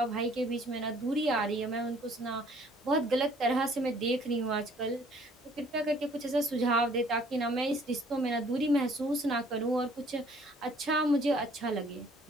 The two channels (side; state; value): both; normal; correlation 0.58